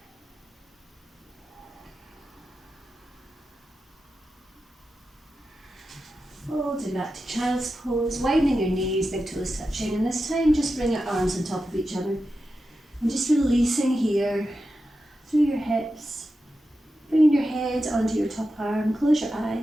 Folding back to child's pose, widening your knees, big toes touching, and this time just bring your arms on top of each other. And just releasing here through your hips, bringing your head onto your top arm, close your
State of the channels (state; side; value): normal; both; correlation 0.91